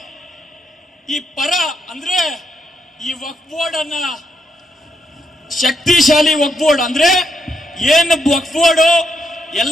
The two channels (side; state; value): both; normal; correlation 0.78